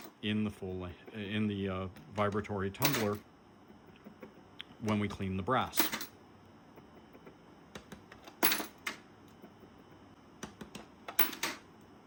in the vibratory tumbler when we clean the brass.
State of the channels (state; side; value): identical; both; correlation 1.00